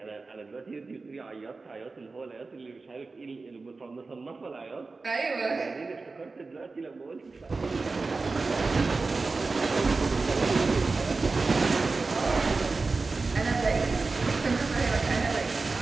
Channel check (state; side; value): quieter; left; 3.9 dB